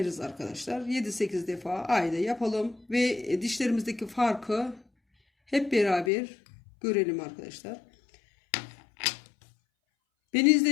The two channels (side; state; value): right; drops out; at 6.1 s